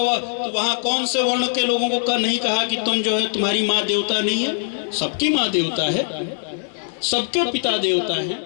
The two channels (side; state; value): right; silent; 58 dB below the other